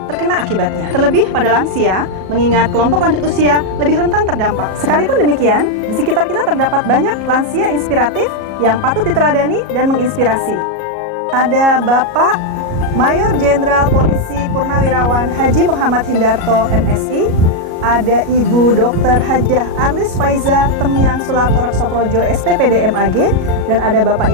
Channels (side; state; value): left; late; 37 ms